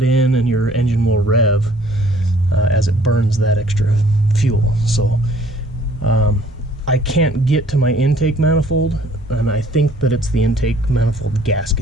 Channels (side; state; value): both; normal; correlation 0.58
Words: in and your engine will rev as it burns that extra fuel. So I can't get to my intake manifold, and I think that it's the intake manifold